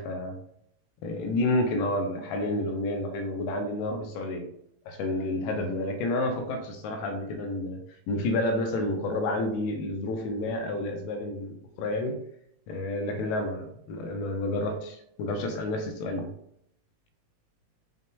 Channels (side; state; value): right; late; 18 ms